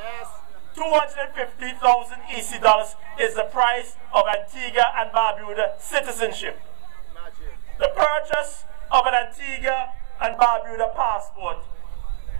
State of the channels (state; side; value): silent; left; digital silence